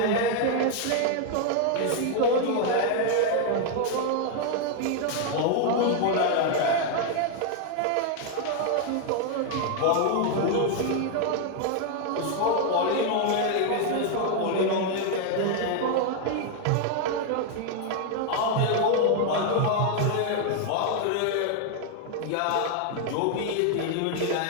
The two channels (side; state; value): both; different; correlation 0.00